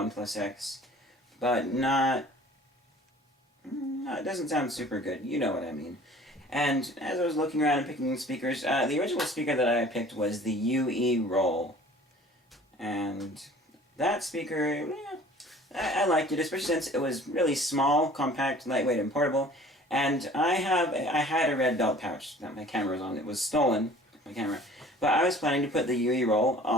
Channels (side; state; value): both; normal; correlation 0.49